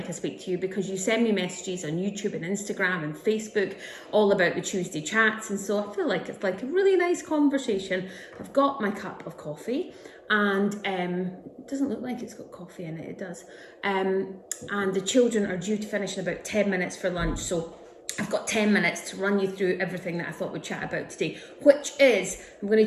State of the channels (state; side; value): identical; both; correlation 1.00